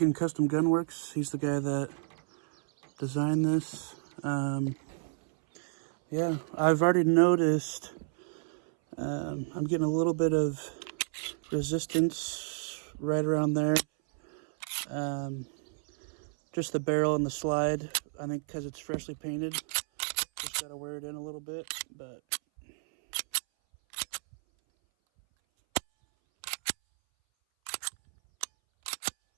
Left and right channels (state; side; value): silent; left; 57 dB below the other